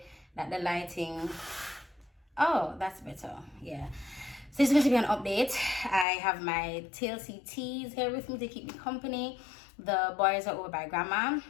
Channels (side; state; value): right; drops out; at 6.1 s